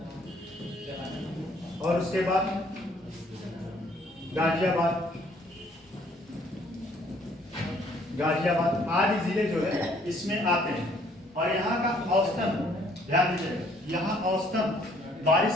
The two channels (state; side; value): normal; both; correlation 0.62